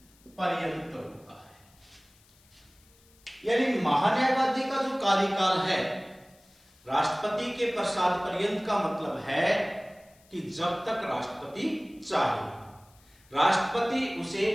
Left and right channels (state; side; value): noise; left; hiss, 30 dB below the sound